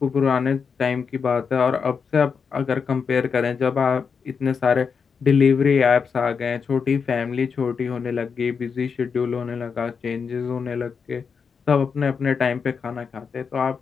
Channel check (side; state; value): right; quieter; 5.9 dB